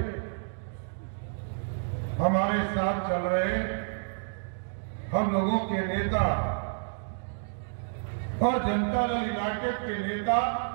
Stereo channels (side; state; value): left; silent; digital silence